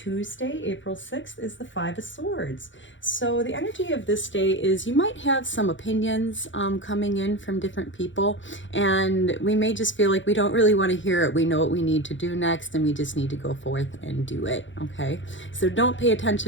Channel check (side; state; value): right; late; 0.55 ms